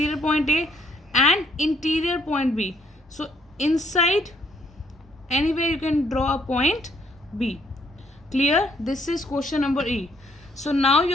point A and interior point B. So inside, anywhere you can draw a point B. Clear? This is question number E. So now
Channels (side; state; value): both; normal; correlation 0.68